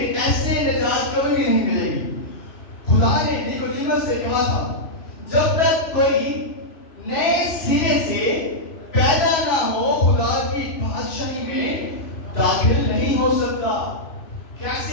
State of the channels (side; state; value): right; late; 2.5 ms